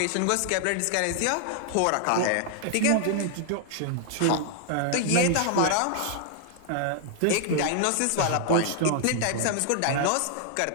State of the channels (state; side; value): different; both; correlation 0.00